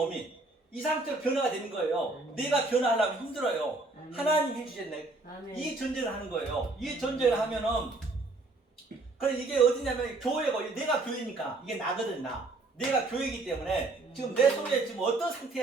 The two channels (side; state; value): left; quieter; 3.2 dB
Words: 이 상태로 변화가 되는 거예요. 내가 변화하려면 힘들어요. 하나님 해주셨네. 이 전쟁을 하는 거예요. 이 전쟁을 하면은 그래 이게 어디냐면 교회고 내가 교회니까 이게 나거든 나. 내가 교회이기 때문에 지금 내 속에 지금 어떤